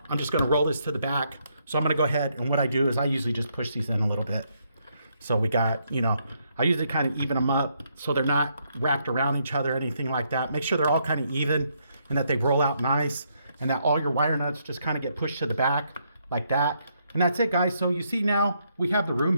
I'm just going to roll this to the back. So I'm going to go ahead, and what I do is I usually just push these in a little bit. So we got, you know, I usually kind of even them up so they're not wrapped around each other or anything like that. Make sure they're all kind of even and that they roll out nice, and that all your wire nuts just kind of get pushed to the back like that. And that's it, guys. So you see now we have the room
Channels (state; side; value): inverted; both; correlation -0.75